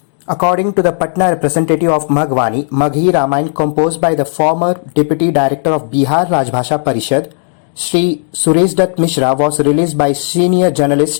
According to the Patna representative of Magwani, Maghi Ramayan composed by the former Deputy Director of Bihar Rajbhasha Parishad, Sri Suresh Dutt Mishra, was released by senior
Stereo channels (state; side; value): silent; right; digital silence